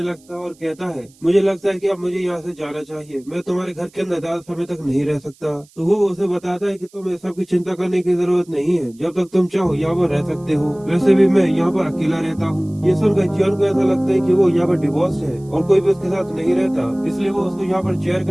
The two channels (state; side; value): noise; right; hiss, 29 dB below the sound